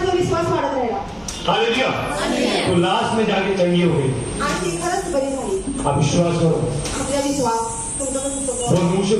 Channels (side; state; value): both; identical; correlation 1.00